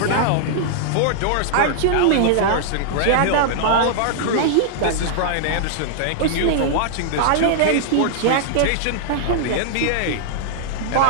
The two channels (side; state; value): both; different; correlation -0.01